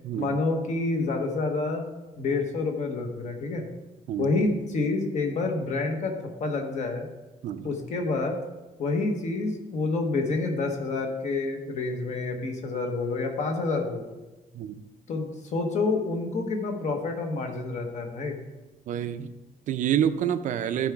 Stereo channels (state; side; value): normal; both; correlation 0.51